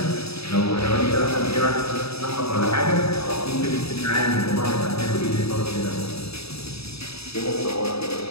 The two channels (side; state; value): right; late; 0.78 ms